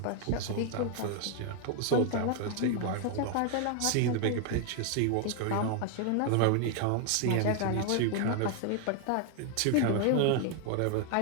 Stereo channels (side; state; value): both; different; correlation 0.00